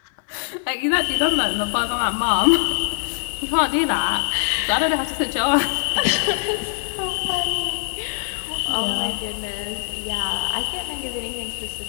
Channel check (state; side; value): silent; right; digital silence